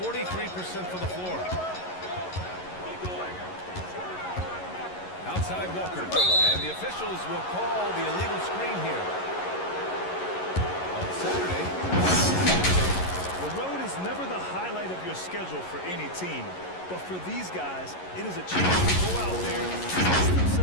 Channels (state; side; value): late; right; 11 ms